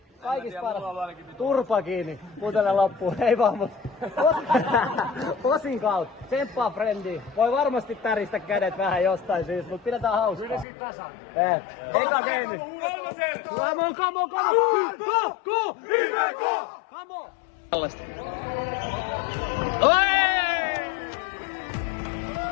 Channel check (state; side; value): drops out; right; at 10.7 s